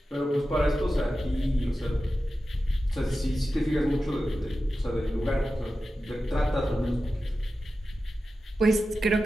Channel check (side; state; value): both; normal; correlation 0.93